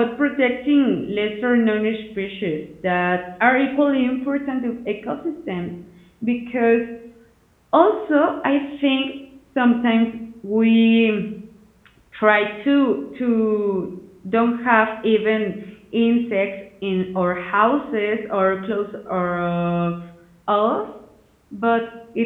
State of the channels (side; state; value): both; identical; correlation 1.00